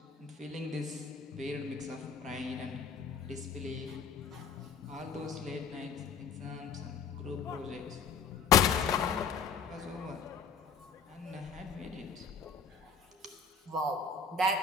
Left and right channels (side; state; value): right; quieter; 5.5 dB